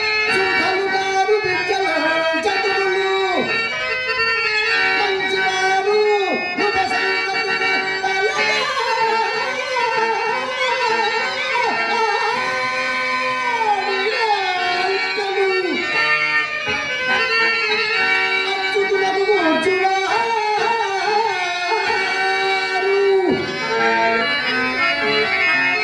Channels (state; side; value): identical; both; correlation 1.00